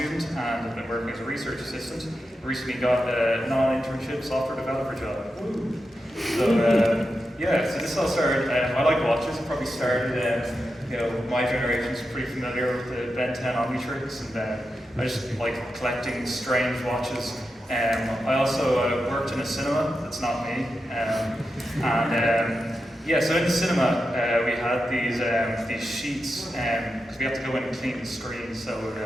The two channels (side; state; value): both; normal; correlation 0.89